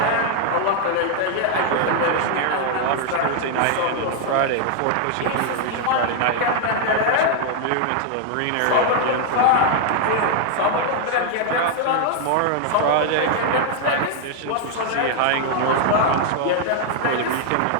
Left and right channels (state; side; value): different; both; correlation 0.00